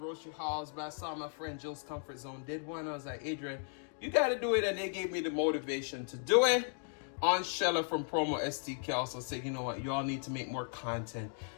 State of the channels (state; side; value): silent; right; 54 dB below the other